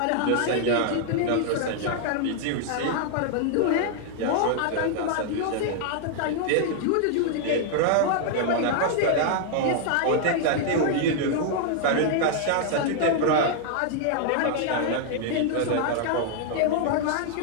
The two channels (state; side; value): different; both; correlation 0.00